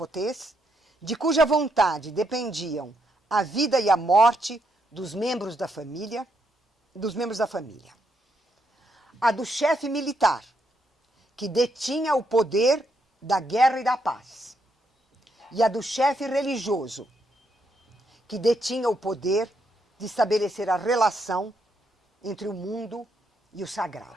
de cuja vontade dependiam a vida e a morte dos membros da família, A do chefe militar, que detinha o poder da guerra e da paz. E a do chefe religioso, que detinha o poder de estabelecer a relação entre o mundo e o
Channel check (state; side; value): normal; both; correlation 0.77